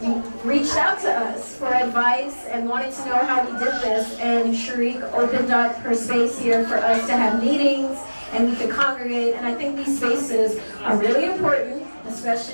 reached out to us for advice and wanted to know how we did this. And Sharik opened up her space here for us to have meetings, and we could congregate. And I think these spaces are really important,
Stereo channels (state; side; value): inverted; both; correlation -1.00